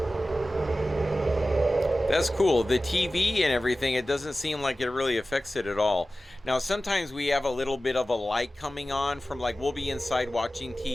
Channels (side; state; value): both; normal; correlation 0.95